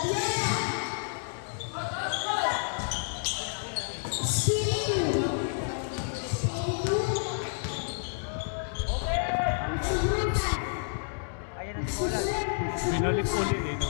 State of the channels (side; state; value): right; silent; 58 dB below the other